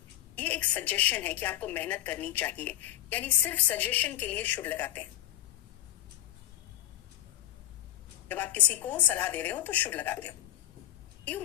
ये एक सजेशन है कि आपको मेहनत करनी चाहिए, यानी सिर्फ सजेशन के लिए शुड लगाते हैं। जब आप किसी को सलाह दे रहे हो तो शुड लगाते हो। You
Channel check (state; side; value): quieter; right; 13.2 dB